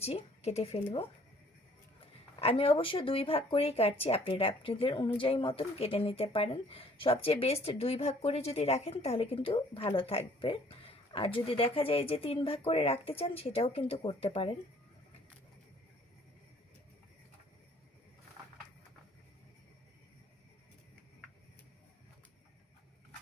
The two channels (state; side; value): normal; both; correlation 0.58